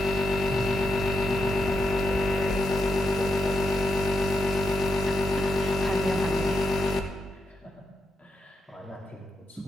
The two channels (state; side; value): normal; both; correlation 0.84